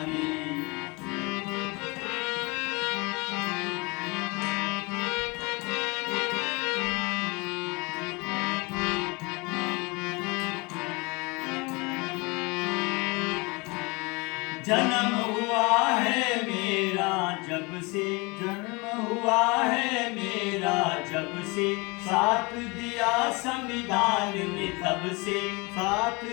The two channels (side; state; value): right; quieter; 27.1 dB